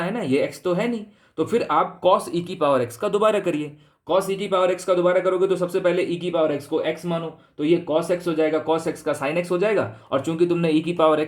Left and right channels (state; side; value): identical; both; correlation 1.00